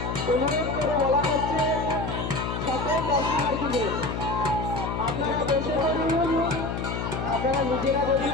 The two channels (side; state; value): left; noise; hum, 3 dB below the sound